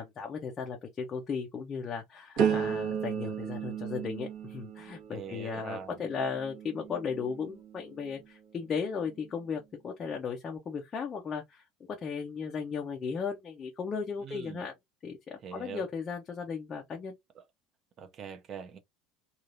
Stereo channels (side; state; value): both; normal; correlation 0.61